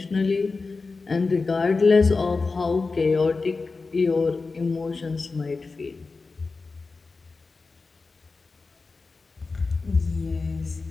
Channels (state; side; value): quieter; right; 4.0 dB